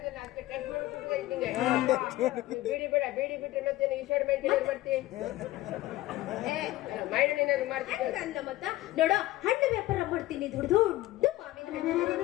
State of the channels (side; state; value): right; quieter; 16.8 dB